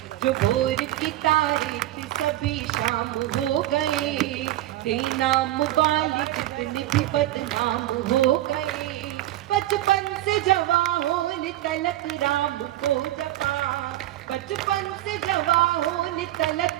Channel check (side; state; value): left; quieter; 14.9 dB